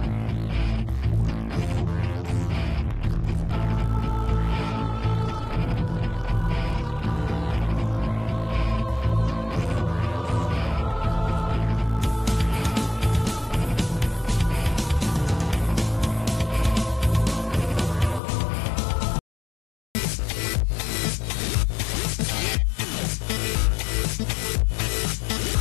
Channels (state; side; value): drops out; right; at 18.2 s